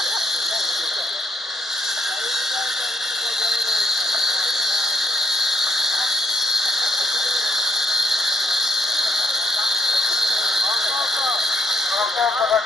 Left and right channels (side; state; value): both; normal; correlation 0.75